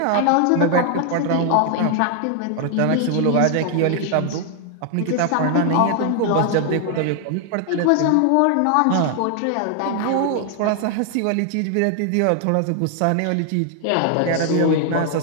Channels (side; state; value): both; different; correlation 0.00